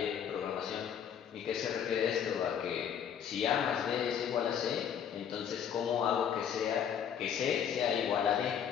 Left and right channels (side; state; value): right; quieter; 8.5 dB